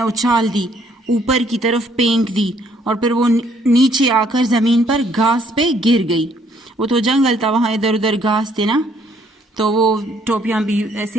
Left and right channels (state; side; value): normal; both; correlation 0.66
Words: उछाल दी, ऊपर की तरफ फेंक दी और फिर वो नीचे आकर ज़मीन पर घास पे गिर गई. वो तो जंगल था, वहाँ इधर उधर घास थे ना, तो वो टोपियाँ भी